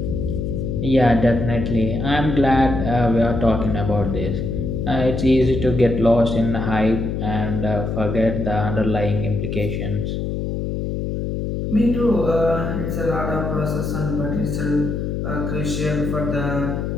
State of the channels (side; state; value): left; noise; hum, 2 dB below the sound